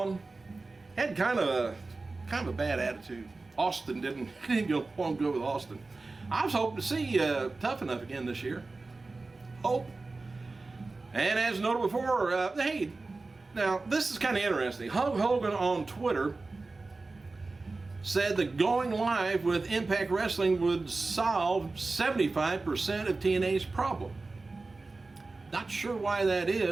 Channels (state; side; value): quieter; left; 3.5 dB